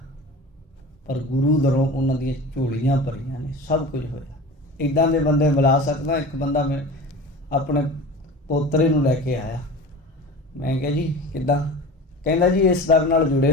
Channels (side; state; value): both; normal; correlation 0.35